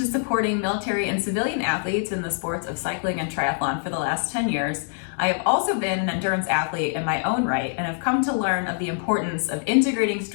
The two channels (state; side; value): silent; right; 62 dB below the other